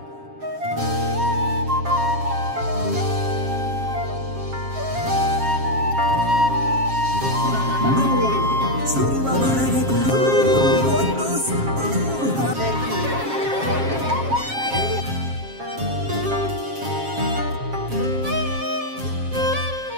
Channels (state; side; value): late; left; 7.4 ms